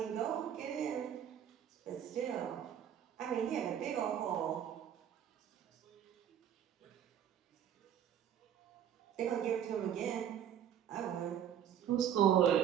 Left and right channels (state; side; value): quieter; left; 9.6 dB